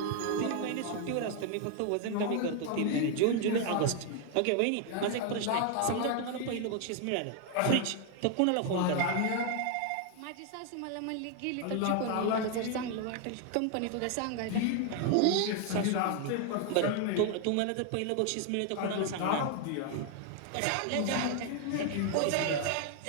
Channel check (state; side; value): different; both; correlation 0.00